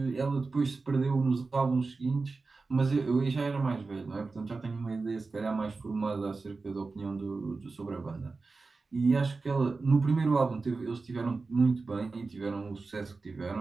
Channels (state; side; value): quieter; left; 4.0 dB